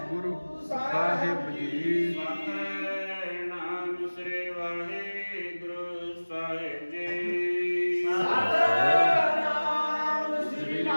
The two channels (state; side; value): inverted; both; correlation -1.00